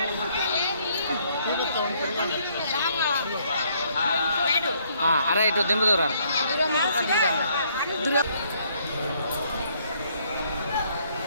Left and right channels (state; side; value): inverted; both; correlation -0.67